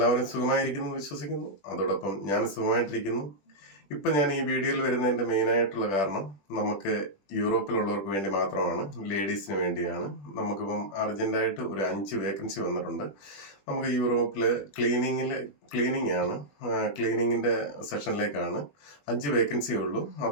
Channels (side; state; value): right; late; 21 ms